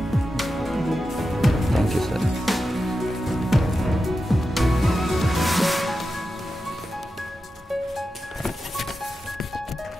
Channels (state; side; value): normal; both; correlation 0.91